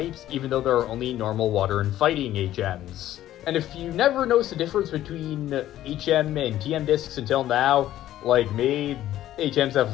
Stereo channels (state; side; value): quieter; right; 13.2 dB